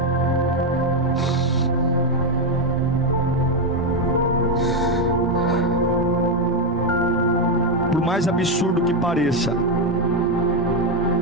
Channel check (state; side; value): normal; both; correlation 0.05